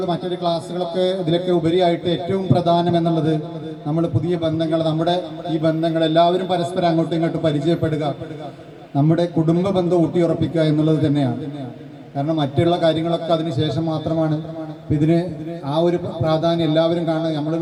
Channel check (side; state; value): both; identical; correlation 1.00